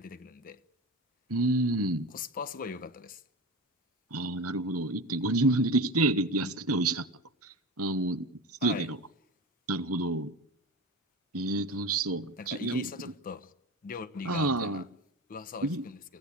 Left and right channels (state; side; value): normal; both; correlation 0.28